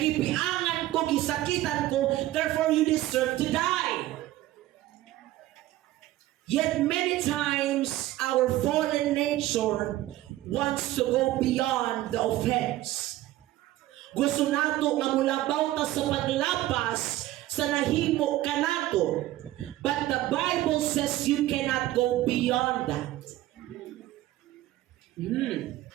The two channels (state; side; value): quieter; left; 15.6 dB